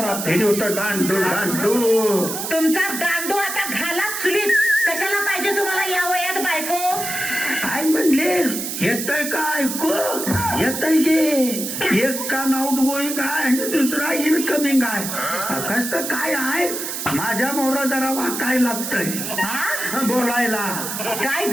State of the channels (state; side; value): noise; right; hiss, 5 dB below the sound